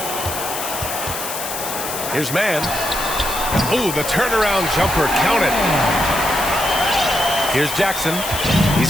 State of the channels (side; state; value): left; noise; hiss, 6 dB below the sound